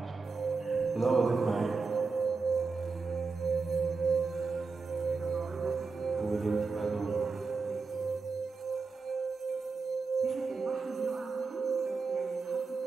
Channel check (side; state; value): left; quieter; 4.5 dB